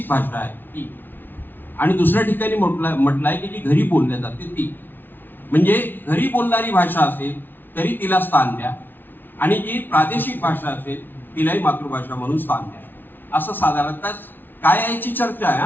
भाषा आहे ती, आणि दुसऱ्या ठिकाणी म्हटलं आहे की जी घरी बोलल्या जाते ती. म्हणजे घरी बोलणारी भाषा असेल तरी तिला स्थान द्या, आणि जी प्रादेशिक भाषा असेल तिलाही मातृभाषा म्हणून स्थान द्या, असं साधारणतः काय याची चर्चा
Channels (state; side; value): late; right; 0.095 ms